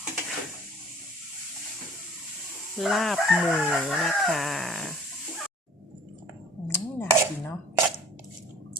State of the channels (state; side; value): normal; both; correlation 0.49